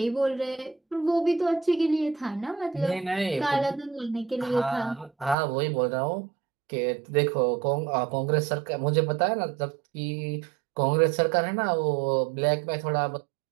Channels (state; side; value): drops out; left; at 5.4 s